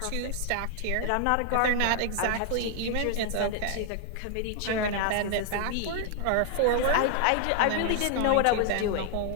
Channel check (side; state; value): both; different; correlation 0.00